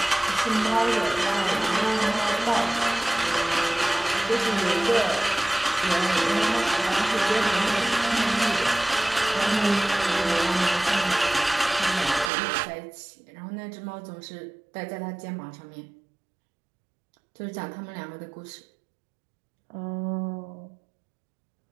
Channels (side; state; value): left; drops out; at 12.3 s